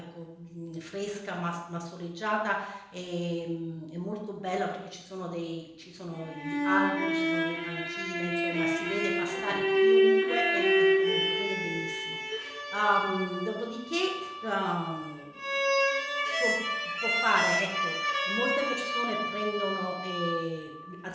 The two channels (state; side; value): identical; both; correlation 1.00